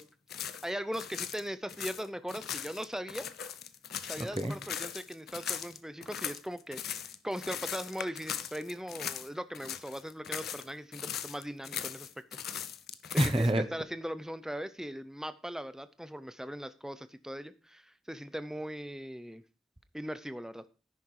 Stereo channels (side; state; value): both; normal; correlation 0.82